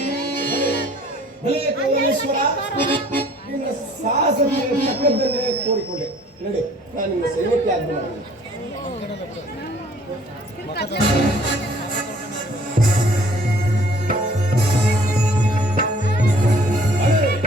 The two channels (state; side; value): normal; both; correlation 0.56